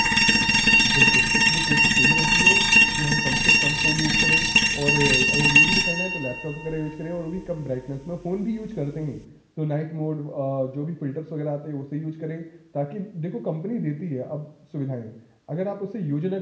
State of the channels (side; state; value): both; identical; correlation 1.00